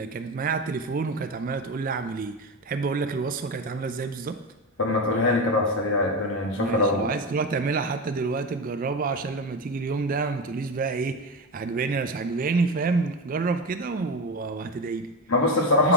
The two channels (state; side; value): normal; both; correlation 0.18